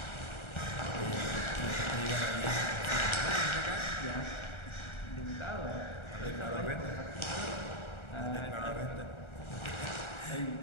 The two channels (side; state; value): right; late; 1.4 ms